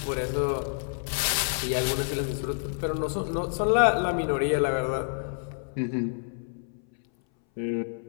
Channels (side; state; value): right; silent; 59 dB below the other